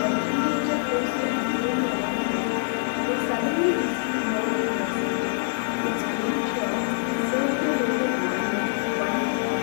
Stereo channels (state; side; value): silent; right; 57 dB below the other